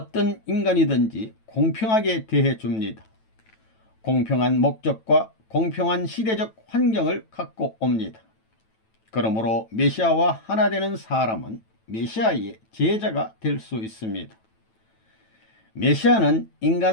인간이든지 공평하게 대해 줍니다. 공평한 목적과 공평한 시대적 환경을 갖고 옵니다. 그러므로 메시아와 하나 되는 사람은 메시아의 제자가 될 수 있습니다. 메시아는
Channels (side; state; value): right; late; 9.1 ms